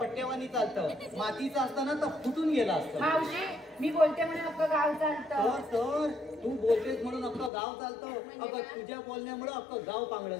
चालतं. मातीचं असताना तर फुटून गेलं असतं. मावशी मी बोलते म्हणून अख्खं गाव चालतं. तर तू बोलतेस म्हणून अख्खं गाव चालतं. अगं तुझ्या बोलण्यामुळे अख्खं गाव पांगळं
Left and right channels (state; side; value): drops out; right; at 7.5 s